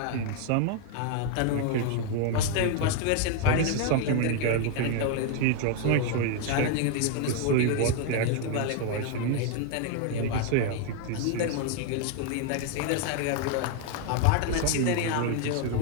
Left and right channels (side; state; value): both; different; correlation 0.00